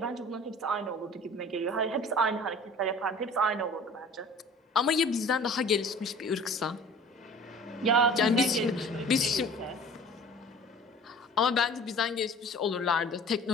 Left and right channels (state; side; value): normal; both; correlation 0.45